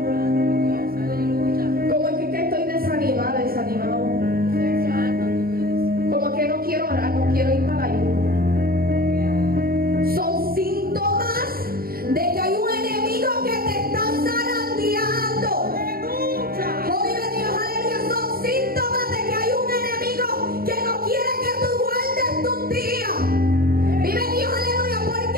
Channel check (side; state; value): left; late; 0.43 ms